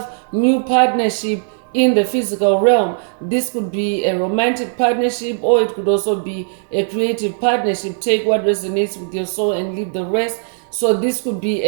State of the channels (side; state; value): left; silent; digital silence